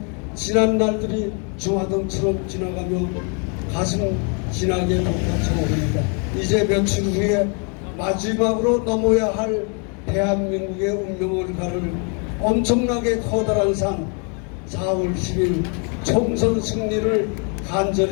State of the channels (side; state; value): right; quieter; 38.1 dB